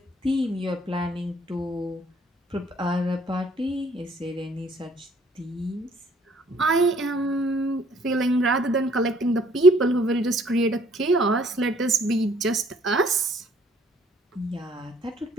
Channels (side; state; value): both; normal; correlation 0.60